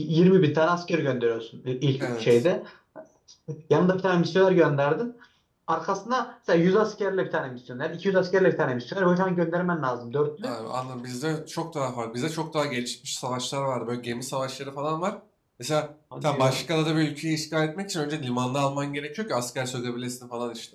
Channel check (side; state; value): both; identical; correlation 1.00